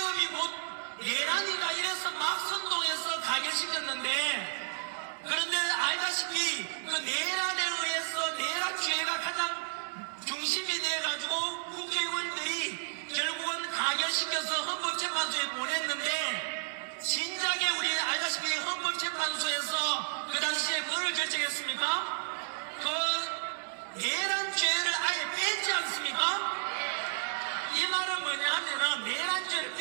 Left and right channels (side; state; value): left; silent; 56 dB below the other